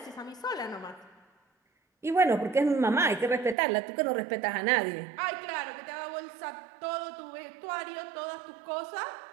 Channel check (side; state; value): left; drops out; at 3.6 s